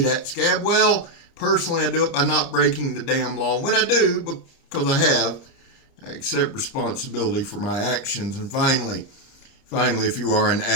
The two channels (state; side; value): late; right; 29 ms